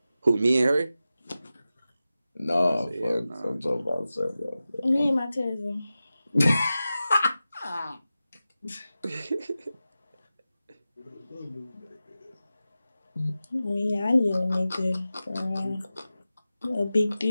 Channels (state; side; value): inverted; both; correlation -0.94